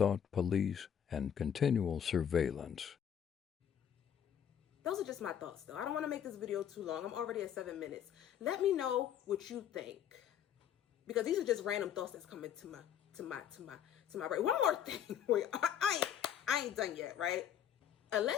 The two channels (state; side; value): quieter; right; 9.3 dB